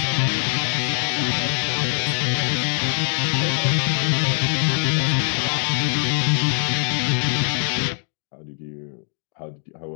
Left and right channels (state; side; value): silent; right; 64 dB below the other